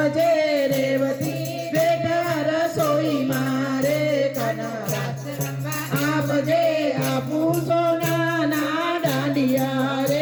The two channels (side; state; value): both; identical; correlation 1.00